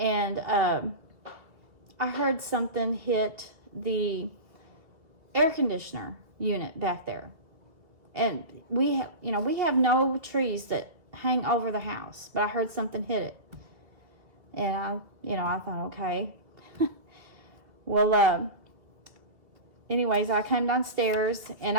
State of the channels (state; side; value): late; left; 2.4 ms